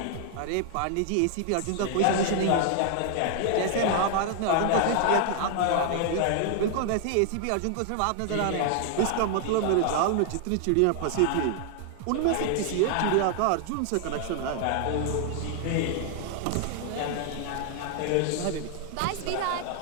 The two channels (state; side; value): different; both; correlation 0.00